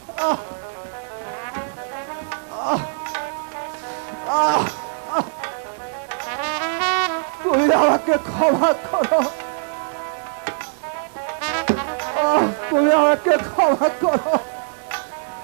আহ, আহ, আহ, আহ। তুমি আমাকে ক্ষমা করো। তুমি আমাকে ক্ষমা করো।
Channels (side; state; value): left; silent; digital silence